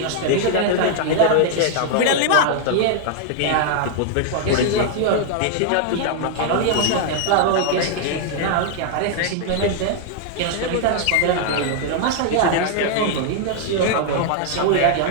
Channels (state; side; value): different; both; correlation 0.00